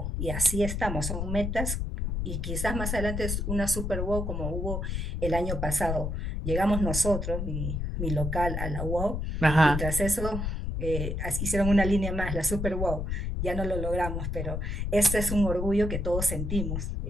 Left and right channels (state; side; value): noise; left; rumble, 2 dB below the sound